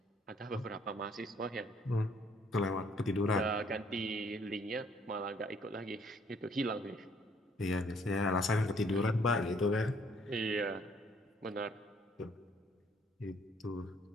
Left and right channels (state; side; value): normal; both; correlation 0.63